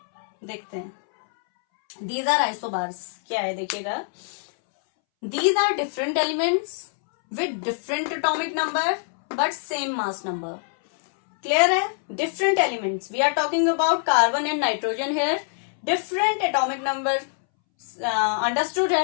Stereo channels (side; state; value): right; silent; 62 dB below the other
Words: देखते हैं, these are isobars। क्या है देखिएगा, these are different elements with different atomic number but same mass number। clear है, different elements, we are talking about carbon and nitrogen here, different atomic number understood है,